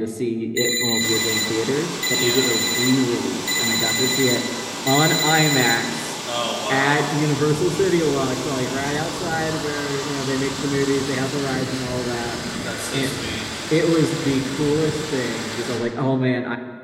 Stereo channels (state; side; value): identical; both; correlation 1.00